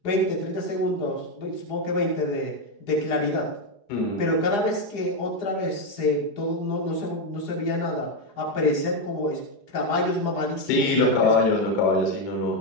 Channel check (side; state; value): right; late; 4.9 ms